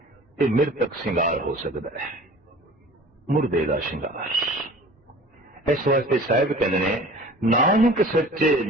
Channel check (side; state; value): both; normal; correlation 0.44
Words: ये मृतक श्रृंगार हो सकता है, मुर्दे का श्रृंगार। इस वास्ते साहिब कहते ने नानक सच्चे